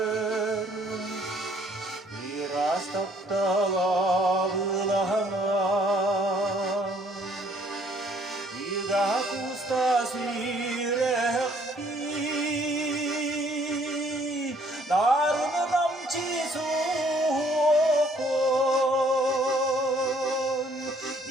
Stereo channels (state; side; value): normal; both; correlation 0.62